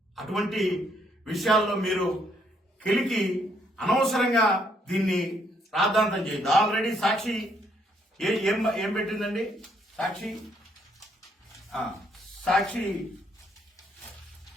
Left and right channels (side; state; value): both; normal; correlation 0.71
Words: అటువంటి విషయాల్లో మీరు కెలికి అనవసరంగా దీన్ని రాద్ధాంతం చేయదు. ఆల్రెడీ సాక్షి ఏం పెట్టిందండి? సాక్షి